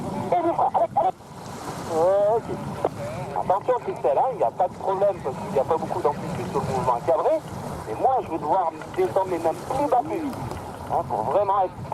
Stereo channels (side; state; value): both; identical; correlation 1.00